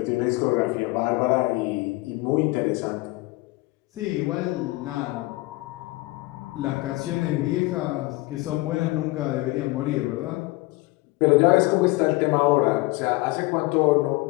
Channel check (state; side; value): quieter; right; 22.1 dB